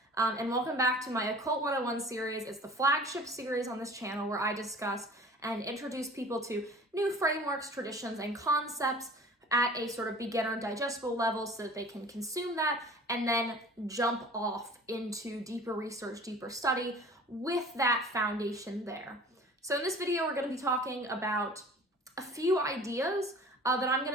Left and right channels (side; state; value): both; normal; correlation 0.44